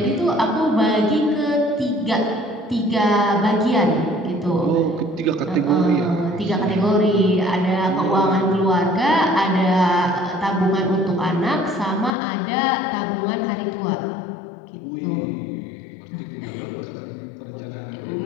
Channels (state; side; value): drops out; right; at 12.2 s